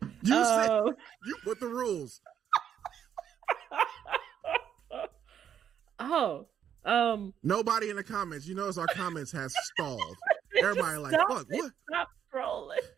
You said you put the rules. Nobody in the comments. You notice our comments has stalled. Everybody like, fuck, what? Stop scrolling.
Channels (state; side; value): quieter; left; 8.9 dB